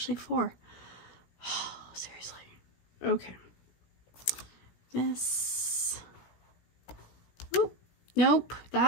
4. Oh, seriously. Okay. This. Oh, nope.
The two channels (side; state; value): right; late; 17 ms